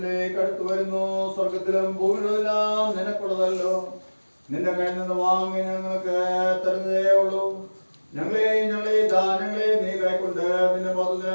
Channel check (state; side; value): inverted; both; correlation -1.00